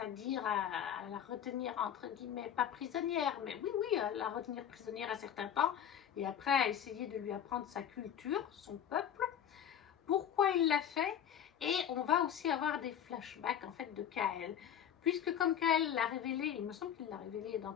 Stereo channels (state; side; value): quieter; right; 9.4 dB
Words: à la retenir, entre guillemets, pas prisonnière, mais oui, à la retenir prisonnière à certains temps, et après à essayer de lui apprendre sa culture, son peuple, pourquoi il l'a fait, et on va aussi avoir des flashbacks, en fait, de Kael, puisque comme Kael l'a révélé, il me semble qu'il l'a révélé dans